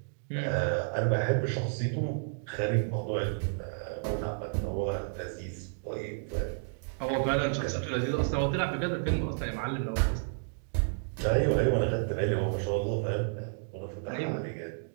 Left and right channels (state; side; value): silent; left; digital silence